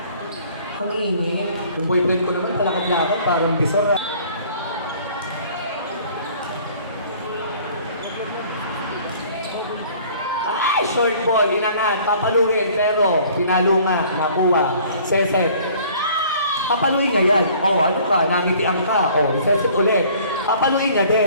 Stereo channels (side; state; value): both; inverted; correlation -0.53